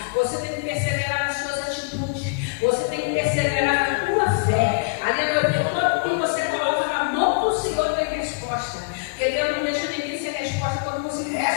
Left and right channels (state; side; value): quieter; right; 32.5 dB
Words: Você tem que perseverar nas suas atitudes. Você tem que perseverar na tua fé. Aleluia, porque todo que você coloca na mão do Senhor tem resposta. Porque Deus não deixa ninguém sem resposta quando você